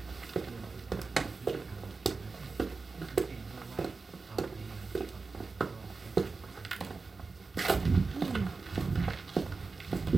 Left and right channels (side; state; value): left; quieter; 4.2 dB